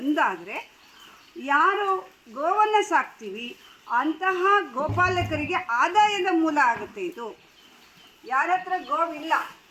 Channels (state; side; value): identical; both; correlation 1.00